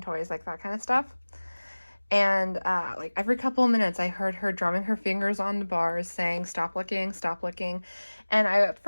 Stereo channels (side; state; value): both; inverted; correlation -1.00